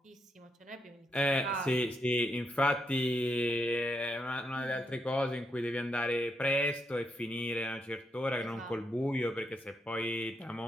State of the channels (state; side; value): normal; both; correlation 0.80